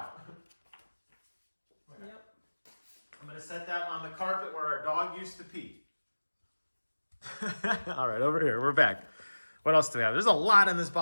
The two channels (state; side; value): inverted; both; correlation -1.00